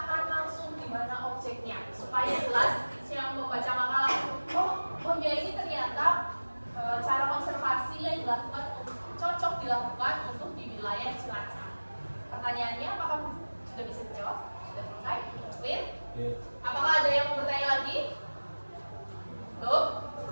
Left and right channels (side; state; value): both; inverted; correlation -1.00